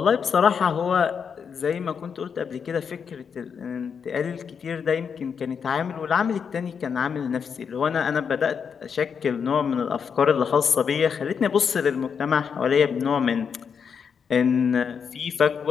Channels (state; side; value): quieter; right; 6.6 dB